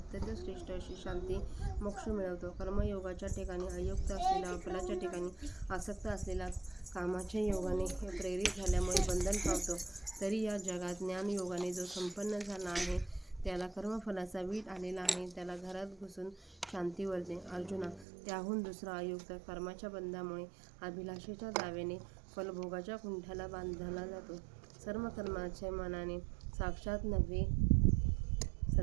श्रेष्ठ अशी शांती मोक्ष मिळवतो. कर्मयोगाच्या ठिकाणी अयुक्त असलेला, फलाच्या ठिकाणी आसक्त असलेला कामाच्या योगाने प्रेरित झाल्यामुळे बंधन पावतो. तरी या जगात ज्ञानयोगाने जो संपन्न झाला आहे त्याला कर्मफलाचा वीट आलेला आहे. त्याला घरात घुसून शांती वरते. अर्जुना, त्याहून दुसरा अयुक्त कर्माच्या बंधामुळे अभिलाषेच्या दाव्याने फलभोगाच्या कुंठाला बांधला जातो. सर्व कर्माच्या मनाने साक्षात नव्हे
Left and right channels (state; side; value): drops out; left; at 18.1 s